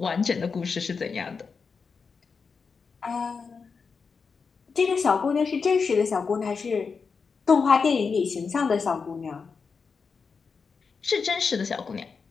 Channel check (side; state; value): right; quieter; 5.3 dB